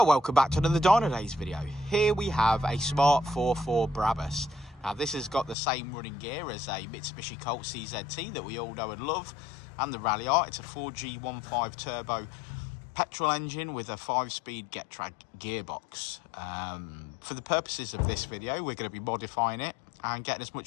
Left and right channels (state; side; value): drops out; right; at 5.6 s